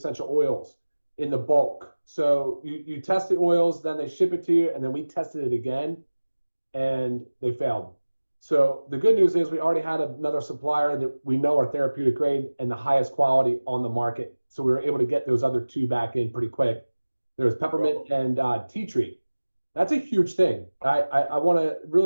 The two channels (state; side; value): inverted; both; correlation -1.00